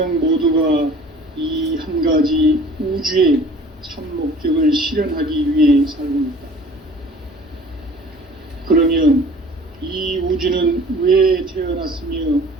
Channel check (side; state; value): both; normal; correlation 0.48